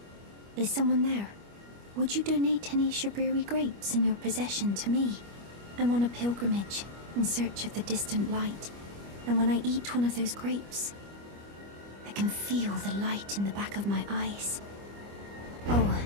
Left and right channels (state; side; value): late; left; 25 ms